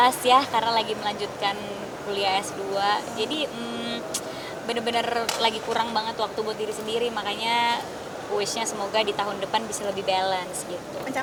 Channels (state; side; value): identical; both; correlation 1.00